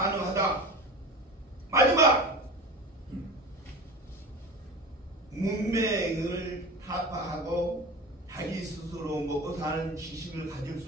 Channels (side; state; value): both; normal; correlation 0.32